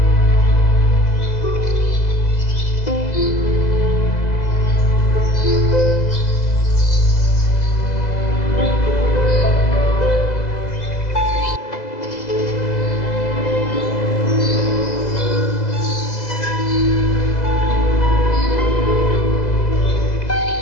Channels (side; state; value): right; late; 2.0 ms